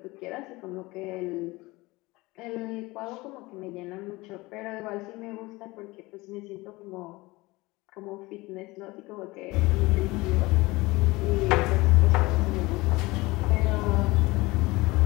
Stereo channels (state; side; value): quieter; right; 21.7 dB